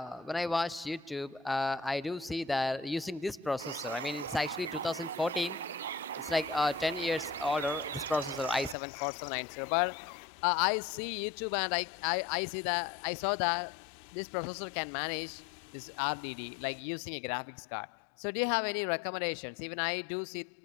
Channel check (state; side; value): drops out; right; at 8.8 s